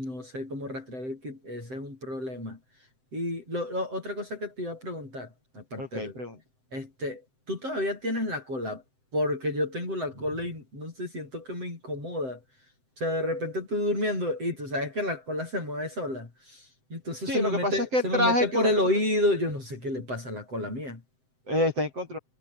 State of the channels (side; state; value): left; late; 7.7 ms